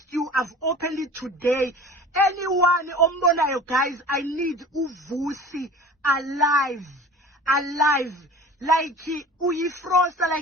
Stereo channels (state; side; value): normal; both; correlation 0.39